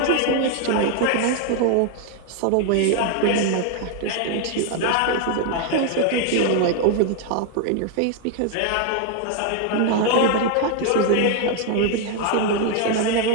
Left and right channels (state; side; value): different; both; correlation 0.01